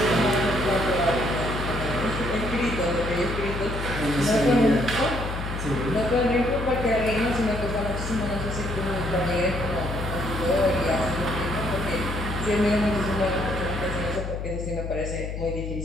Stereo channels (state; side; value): noise; left; hum, 5 dB below the sound